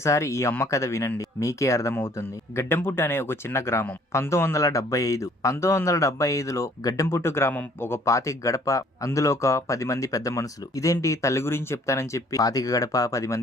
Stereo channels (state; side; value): normal; both; correlation 0.59